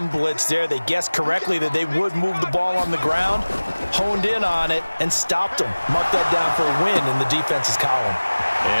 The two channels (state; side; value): inverted; both; correlation -1.00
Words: blitz there. They guessed correctly that they would move the ball on the ground, honed in on it, and stopped them. Marked that down for a win in the defense's column.